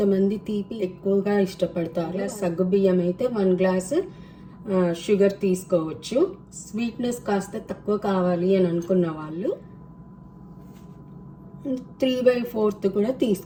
తీపి ఎక్కువగా ఇష్టపడతారు. సగ్గుబియ్యం అయితే 1 గ్లాస్ షుగర్ తీసుకోవచ్చు. స్వీట్నెస్ కాస్త తక్కువ కావాలి అని అనుకున్న వాళ్ళు 3/4 కూడా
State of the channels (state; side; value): identical; both; correlation 1.00